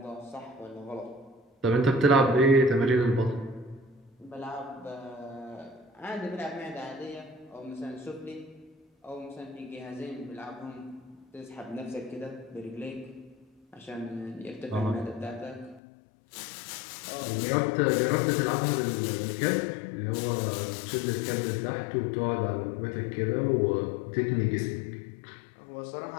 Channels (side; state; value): right; drops out; at 15.8 s